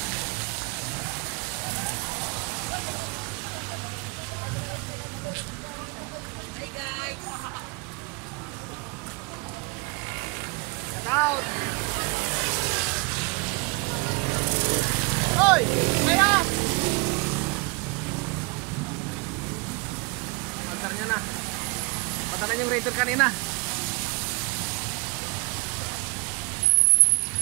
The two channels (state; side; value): quieter; left; 26.7 dB